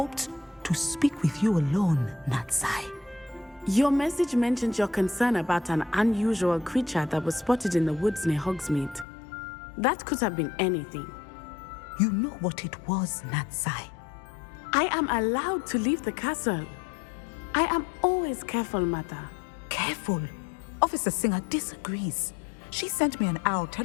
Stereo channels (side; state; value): right; drops out; at 9.1 s